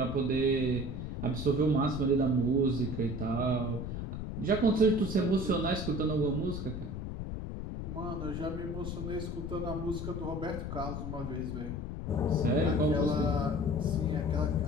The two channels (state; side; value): noise; left; rumble, 5 dB below the sound